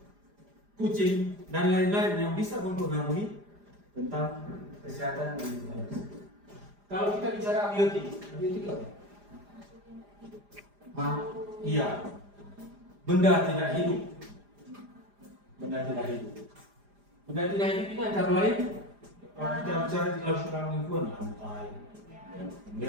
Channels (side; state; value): left; late; 4.9 ms